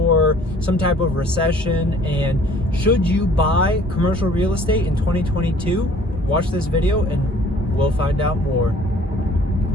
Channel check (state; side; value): normal; both; correlation 0.54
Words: some type of recession. And should you buy commercial real estate in 2022? Watch this video and we'll find out more.